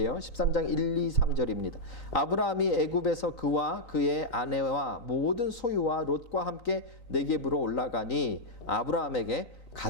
13장 1, 2, 3절입니다. 아브라함이 애굽에서 그와 그의 아내와 모든 소유와 롯과 함께 네겝으로 올라가니 아브라함에게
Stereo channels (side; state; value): right; late; 3.9 ms